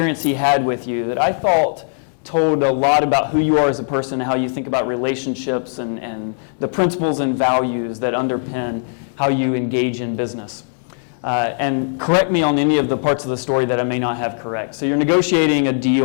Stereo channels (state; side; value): silent; right; digital silence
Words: he had with you that I thought told a lot about who you are as a person, how you think about relationships, and the principles and values that underpin how you engage in business. And correct me on any of the parts of the story that I may not have correct. So you're negotiating a